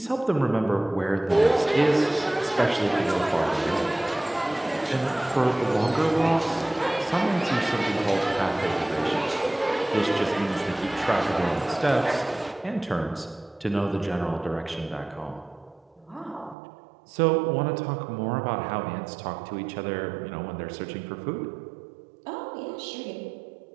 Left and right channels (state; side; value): drops out; left; at 16.6 s